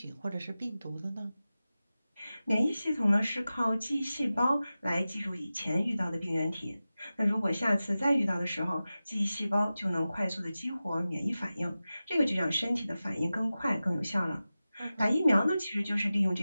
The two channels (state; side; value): inverted; both; correlation -0.95